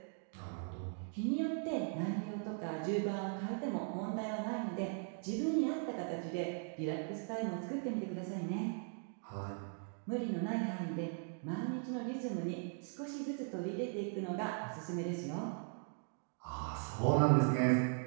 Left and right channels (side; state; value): left; silent; 52 dB below the other